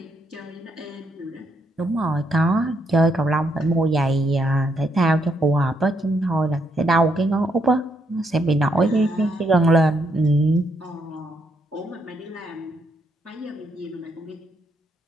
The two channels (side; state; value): both; normal; correlation 0.76